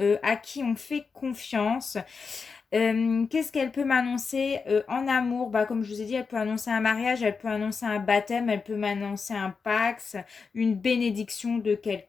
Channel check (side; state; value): right; quieter; 5.1 dB